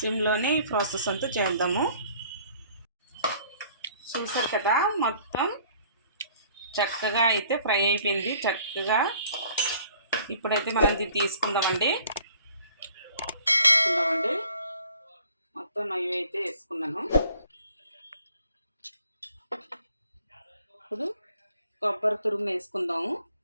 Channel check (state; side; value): inverted; both; correlation -0.56